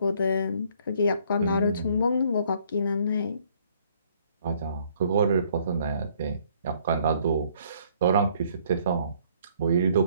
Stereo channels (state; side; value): inverted; both; correlation -0.63